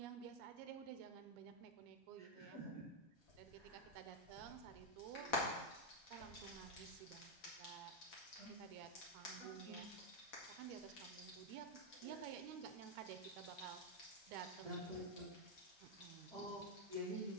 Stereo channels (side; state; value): both; normal; correlation 0.01